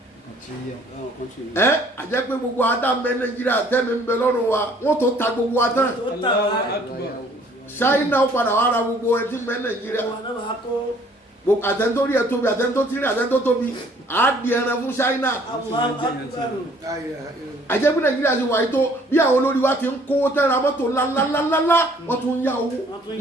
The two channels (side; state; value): both; normal; correlation 0.59